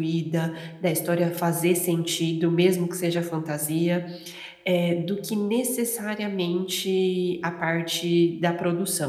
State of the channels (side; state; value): both; identical; correlation 1.00